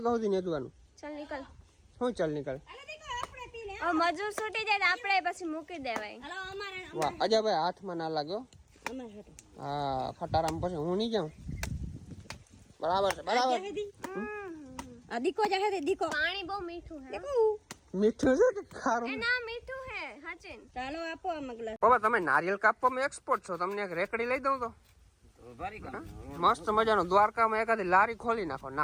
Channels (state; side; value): identical; both; correlation 1.00